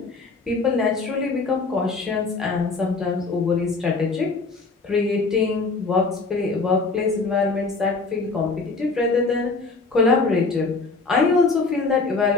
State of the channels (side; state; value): right; quieter; 4.0 dB